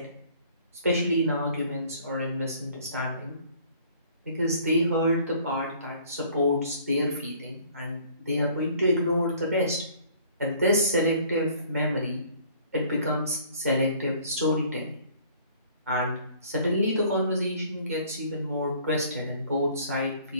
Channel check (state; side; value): inverted; both; correlation -0.55